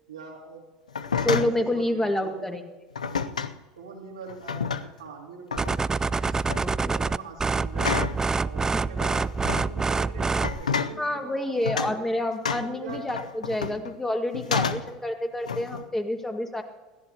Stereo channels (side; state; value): both; normal; correlation 0.56